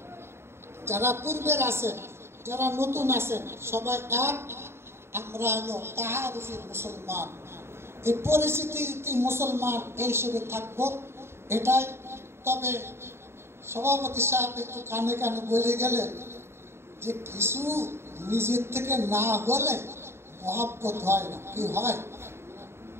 যারা পূর্বের আছেন, যারা নতুন আছেন, সবাই এক। আমরা হলো তাহারুফি মুসলমান, এই পরিস্থিতি মুসলমান এই হিসেবে থাকবো, এটাই। তবে সভাপতি সাহেব একটু কানে কানে বলে গেলেন যে কিছু নিজের থেকে না হলে মহব্বত হয় না। কি হয়?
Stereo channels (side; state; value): left; late; 0.12 ms